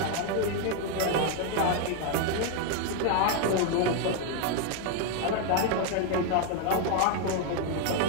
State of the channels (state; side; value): different; both; correlation 0.01